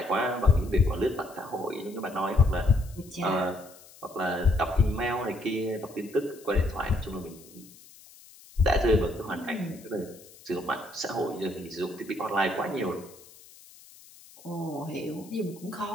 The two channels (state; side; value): noise; left; hiss, 22 dB below the sound